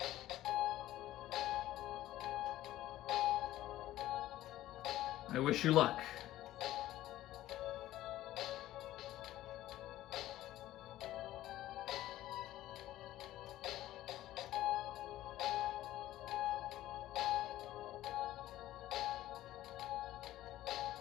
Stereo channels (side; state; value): right; quieter; 14.6 dB